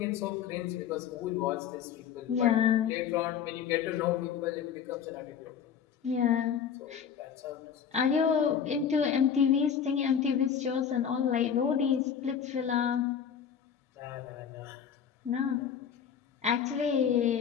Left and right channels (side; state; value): right; quieter; 7.9 dB